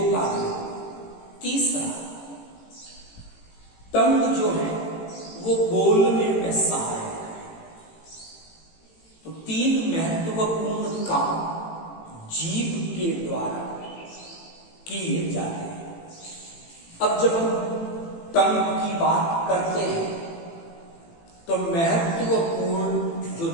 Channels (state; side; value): late; right; 18 ms